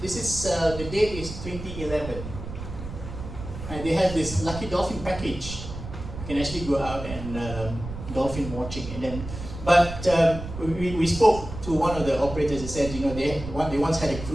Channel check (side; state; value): right; noise; rumble, 9 dB below the sound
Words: This is the date is 2011, and they have this lucky dolphin package. You can actually go out and dolphin watching, and then. But we spoke to one of the operators. They said, they once had a